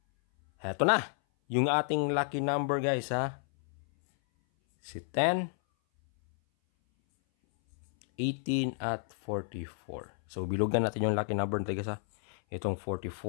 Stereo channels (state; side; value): silent; right; 57 dB below the other